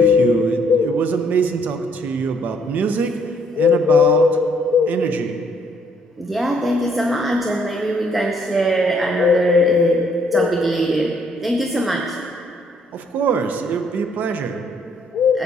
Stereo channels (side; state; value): both; normal; correlation 0.67